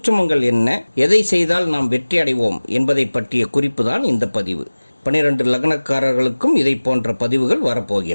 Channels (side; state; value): both; inverted; correlation -1.00